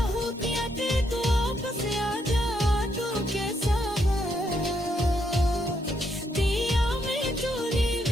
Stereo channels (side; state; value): both; normal; correlation 0.77